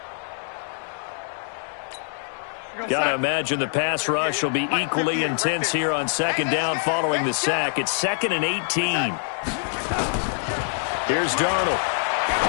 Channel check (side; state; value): right; silent; 62 dB below the other